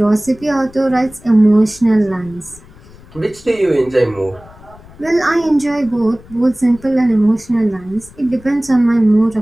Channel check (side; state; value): left; noise; rumble, 22 dB below the sound